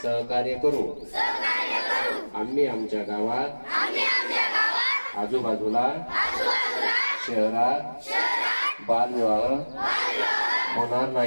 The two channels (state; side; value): inverted; both; correlation -1.00